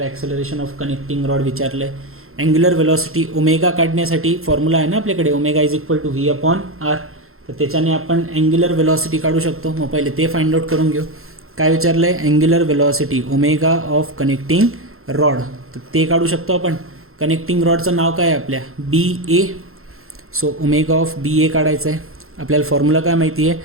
acceleration of connecting rod विचारलं आहे. अँग्युलर वेलॉसिटी ओमेगा काढण्यासाठी फॉर्म्युला आहे ना आपल्याकडे, omega is equal to V upon R. तर त्याच्याने आपण अँग्युलर वेलॉसिटी काढू शकतो. मग पहिले ते फाइंड आउट करून घेऊ. काय विचारलं आहे, angular velocity omega of connecting rod. तर ते काढू शकतो आपण. कनेक्टिंग रॉडचं नाव काय आहे आपल्या, बी ए. सो ओमेगा ऑफ बी ए काढायचं आहे. आपल्याला फॉर्म्युला काय माहिती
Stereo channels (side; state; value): left; late; 0.62 ms